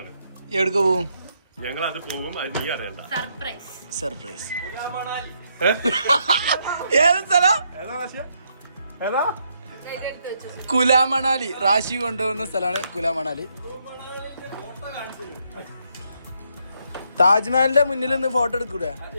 എവിടേക്ക് പോവും? ഞങ്ങൾ അത് പോകും, അത് നീ അറിയണ്ട. സർപ്രൈസ്. ഏതാ? കുലാമണാലി. റാശി കൊണ്ടുപോകുന്ന സ്ഥലമാണ് കുലാമണാലി. താജ്മഹലിന്റെ മുന്നിൽ നിന്ന് ഫോട്ടോ എടുക്കൂടെ?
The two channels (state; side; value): inverted; both; correlation -0.75